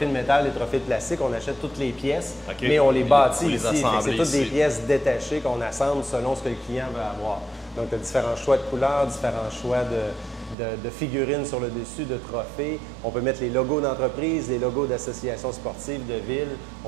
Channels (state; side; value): drops out; left; at 10.6 s